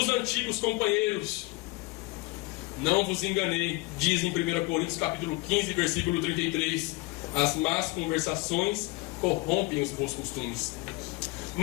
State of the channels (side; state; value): right; quieter; 23.5 dB